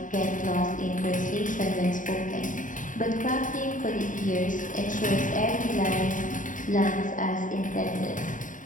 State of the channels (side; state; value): right; late; 0.38 ms